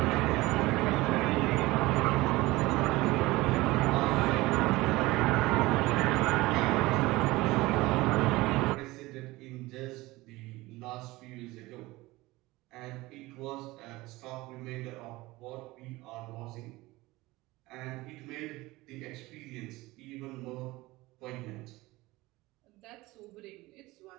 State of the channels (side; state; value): left; quieter; 20.1 dB